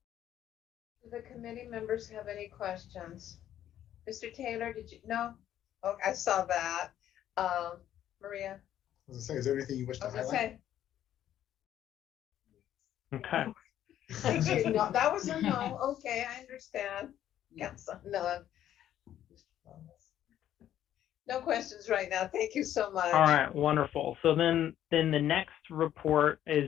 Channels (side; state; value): right; quieter; 11.4 dB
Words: Do the committee members have any questions? Mr. Taylor, did you? No? Oh, I saw that. Maria? I was gonna say, is there anything you wish to highlight? Say. Okay. Thank you. No, that was a no. Okay, I understand. Council, none. No questions right now. Thank you so much. All right, wonderful. So then the next report